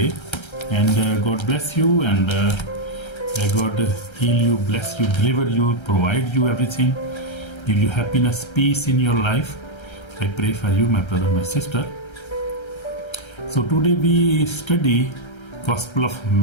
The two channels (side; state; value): right; late; 1.3 ms